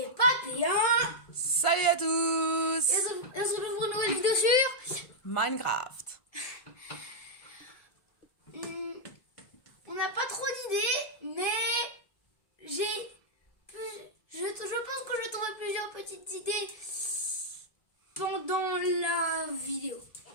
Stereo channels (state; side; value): late; right; 1.5 ms